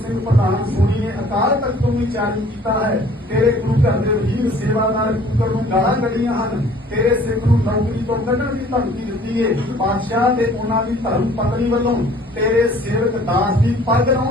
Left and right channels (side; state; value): both; normal; correlation 0.53